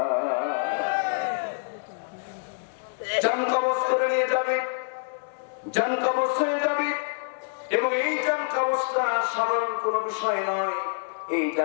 জান কবজ করে নিয়ে যাবে, জান কবজ হয়ে যাবে। এবং এই জান কবজটা সাধারণ কোনো বিষয় নয়, এই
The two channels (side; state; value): right; silent; digital silence